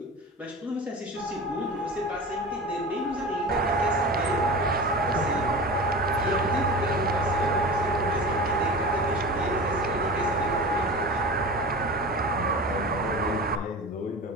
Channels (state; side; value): normal; both; correlation 0.32